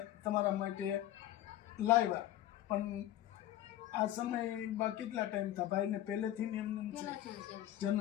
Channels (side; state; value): right; quieter; 13.3 dB